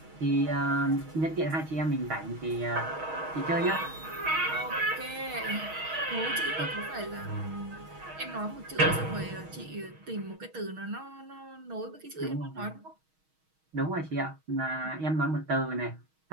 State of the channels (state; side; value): late; left; 6.3 ms